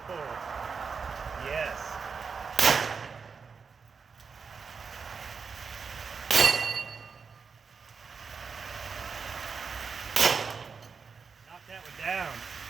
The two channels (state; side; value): quieter; left; 5.5 dB